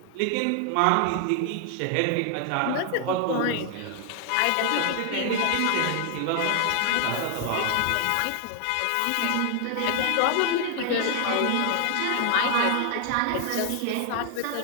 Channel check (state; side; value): different; both; correlation 0.00